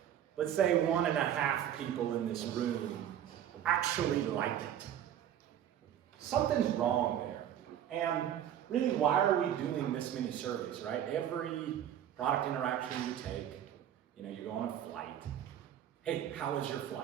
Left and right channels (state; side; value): quieter; left; 10.6 dB